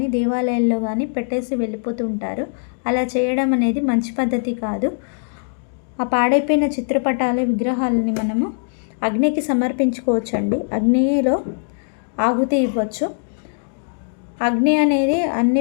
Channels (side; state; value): right; silent; digital silence